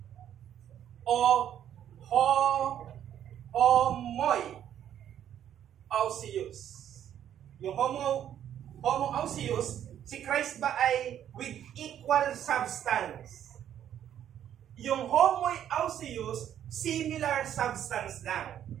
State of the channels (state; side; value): quieter; left; 10.3 dB